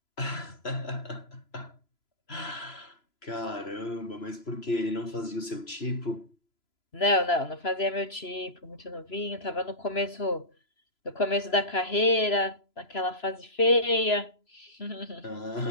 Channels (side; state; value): right; late; 3.0 ms